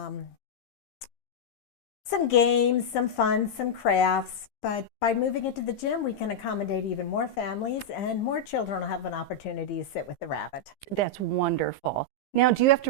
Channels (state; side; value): late; right; 15 ms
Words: Some games, some fun, some crafts, but by moving it to the gym, we can accommodate even more families, and more children will have an opportunity to sit with the rabbit. That's wonderful. Now, do you have